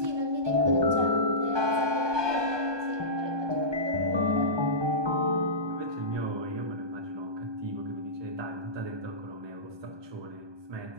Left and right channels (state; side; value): late; left; 1.2 ms